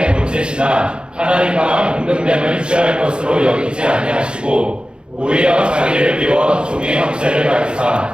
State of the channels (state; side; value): late; left; 0.052 ms